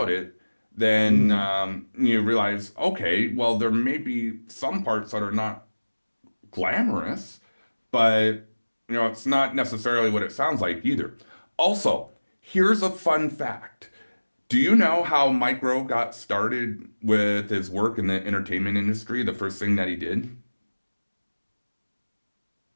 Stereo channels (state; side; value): inverted; both; correlation -1.00